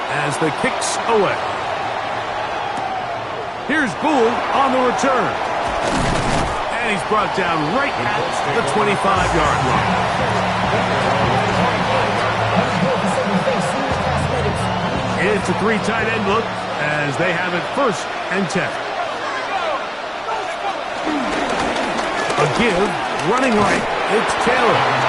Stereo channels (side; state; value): both; identical; correlation 1.00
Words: as the kick's away. Here's Gould on the return. And he's brought down right at the 25-yard line. It's a 3 tight end look as they have it 1st and 10. A give, running right, it's Taylor.